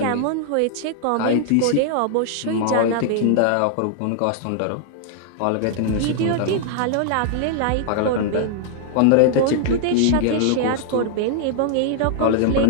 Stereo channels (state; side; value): different; both; correlation -0.01